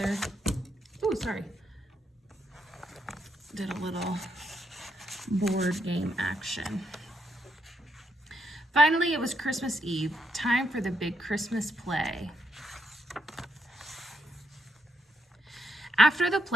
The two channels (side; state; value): both; normal; correlation 0.79